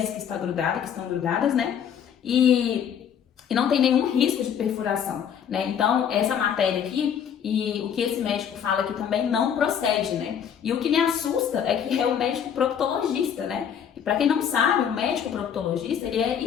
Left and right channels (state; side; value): quieter; right; 8.4 dB